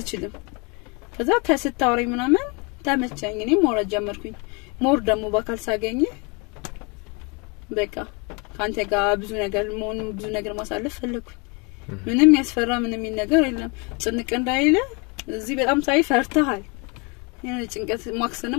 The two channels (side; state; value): right; quieter; 31.2 dB